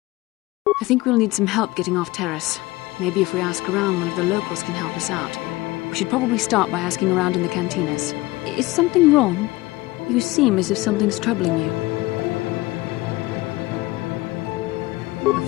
I think we'll need some help getting off Terrace. Maybe if we ask around, one of the locals can help us out. We should probably start by asking around in the cantinas. Is something wrong? You seem as if something's troubling you.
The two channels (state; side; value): quieter; right; 20.1 dB